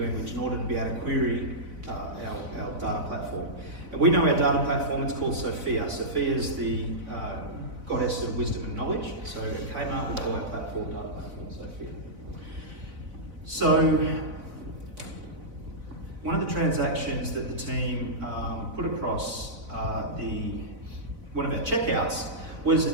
in order to be able to query our data platform. And we know our data platform, it's called Sophia. Sophia is the goddess of wisdom and knowledge. So at Kmart, we call our platform data platform Sophia. So one of the transactions that the team put across one of our checkouts was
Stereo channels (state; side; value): late; left; 4.0 ms